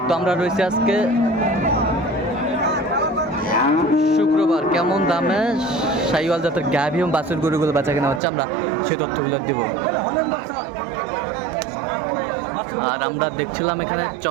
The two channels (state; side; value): drops out; left; at 8.2 s